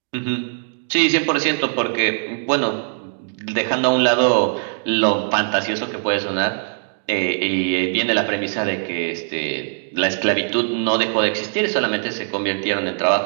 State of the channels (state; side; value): silent; left; digital silence